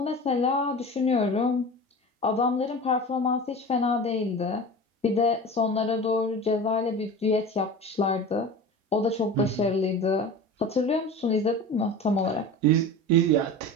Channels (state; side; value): normal; both; correlation 0.33